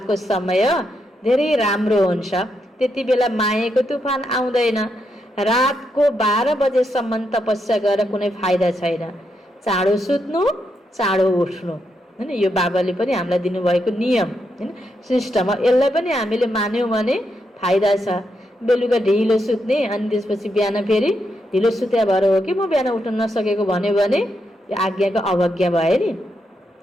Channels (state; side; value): normal; both; correlation 0.81